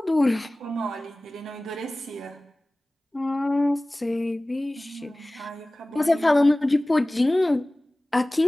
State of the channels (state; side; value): normal; both; correlation 0.98